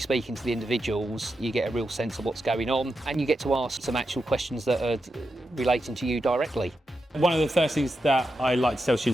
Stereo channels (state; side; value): normal; both; correlation 0.88